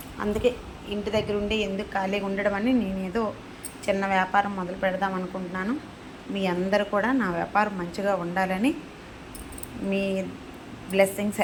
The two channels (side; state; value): both; identical; correlation 1.00